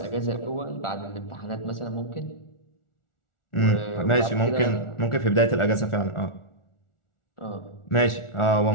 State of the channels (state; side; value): late; right; 1.4 ms